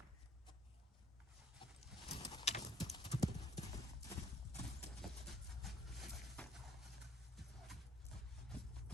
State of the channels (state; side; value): normal; both; correlation 0.59